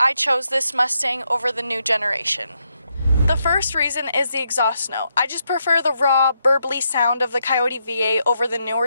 chose this Mustang over the new generation. The first reason is the exhaust note. I just prefer the raw, burbly sound of the Coyote V8 over the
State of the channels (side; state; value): both; inverted; correlation -0.80